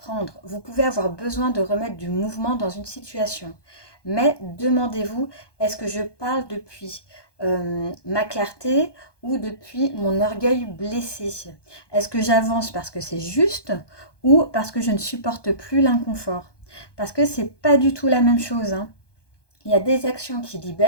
vous pouvez avoir besoin de remettre du mouvement dans une situation. Mais demandez-vous, est-ce que je parle depuis ma clarté ou depuis mon orgueil blessé? Est-ce que j'avance parce que c'est juste ou parce que je ne supporte plus l'inconfort? Parce que c'est pas du tout la même chose, hein. Il y a des actions qui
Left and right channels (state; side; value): late; right; 1.2 ms